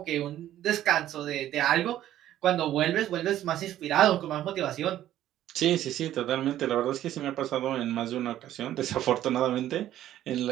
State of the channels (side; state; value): left; quieter; 12.6 dB